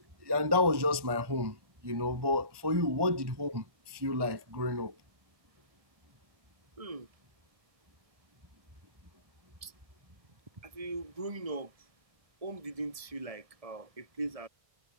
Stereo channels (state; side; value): late; left; 1.2 ms